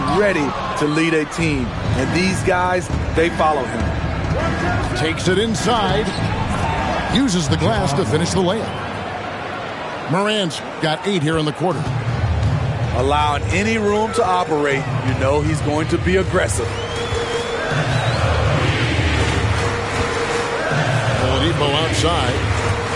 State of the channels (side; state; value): both; identical; correlation 1.00